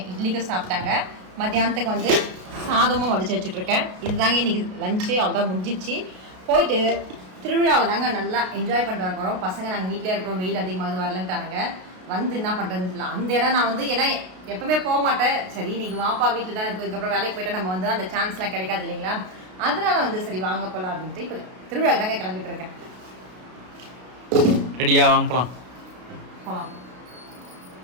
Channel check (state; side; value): late; left; 33 ms